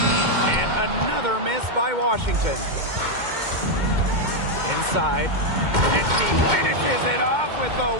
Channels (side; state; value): left; late; 2.1 ms